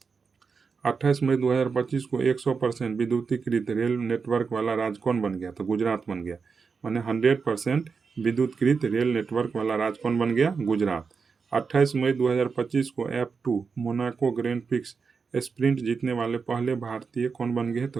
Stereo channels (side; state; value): left; quieter; 5.3 dB